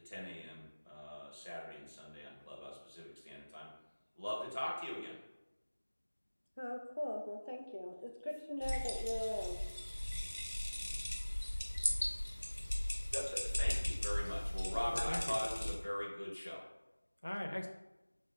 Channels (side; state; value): both; inverted; correlation -1.00